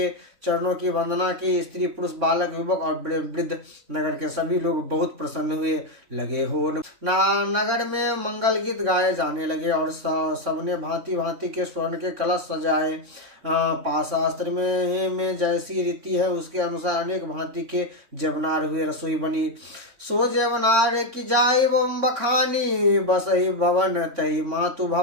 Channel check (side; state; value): left; late; 3.6 ms